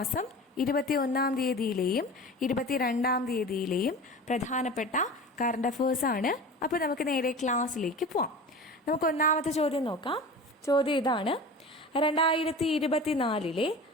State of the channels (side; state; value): both; normal; correlation 0.35